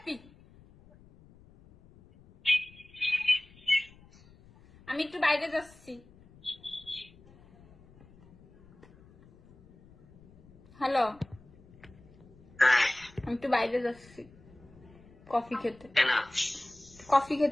আমি একটু বাইরে যাচ্ছি। হ্যালো, আমি একটু বাইরে যাচ্ছি কফি খেতে। কেন? কফি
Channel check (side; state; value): left; noise; rumble, 25 dB below the sound